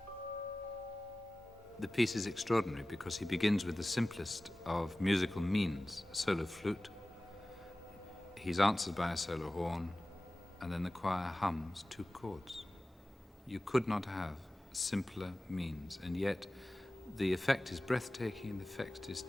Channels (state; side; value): normal; both; correlation 0.97